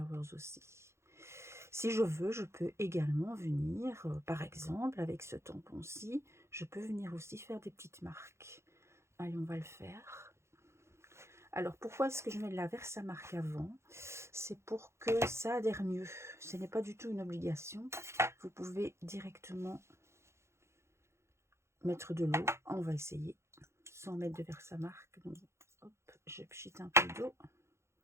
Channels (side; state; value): left; late; 0.13 ms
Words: aussi. Si je veux, je peux également venir, par exemple, avec ce tampon-ci, je peux venir aussi faire des petites marques. Allez, on va le faire. Alors, pourquoi est-ce que je mets de la Versamark avant? C'est pour que ça adhère mieux. Ce n'est pas du tout une obligation. Vous pouvez directement mettre de l'eau. On va essayer sans mettre de Versamark. Donc, hop, je pchite un peu d'eau.